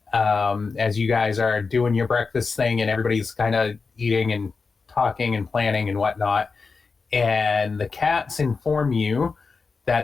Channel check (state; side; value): quieter; right; 4.6 dB